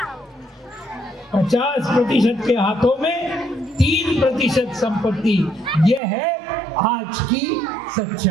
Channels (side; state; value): left; drops out; at 6.0 s